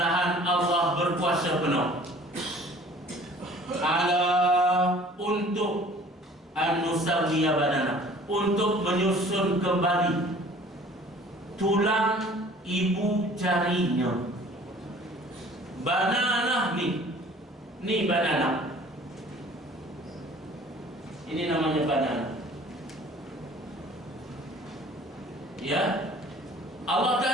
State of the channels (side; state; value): both; normal; correlation 0.50